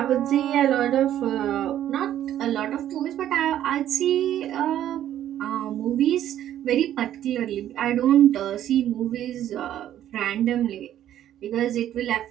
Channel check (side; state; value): left; quieter; 11.6 dB